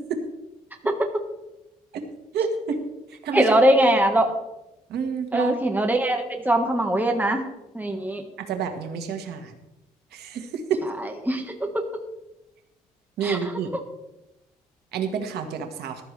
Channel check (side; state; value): both; normal; correlation 0.73